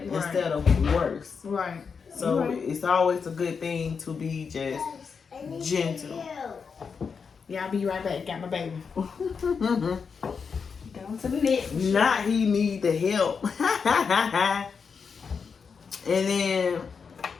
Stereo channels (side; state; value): right; quieter; 5.8 dB